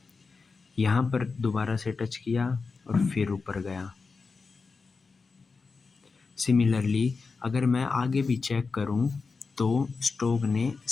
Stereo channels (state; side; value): quieter; right; 4.5 dB